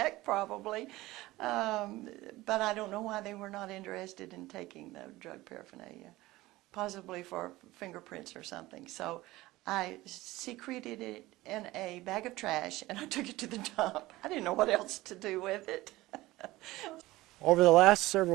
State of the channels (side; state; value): left; quieter; 18.4 dB